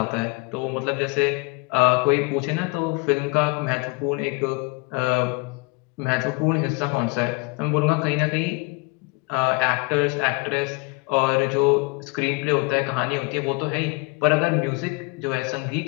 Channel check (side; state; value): right; quieter; 27.2 dB